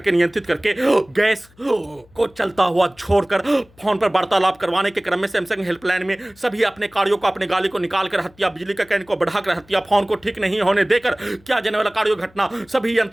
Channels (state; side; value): noise; left; hum, 29 dB below the sound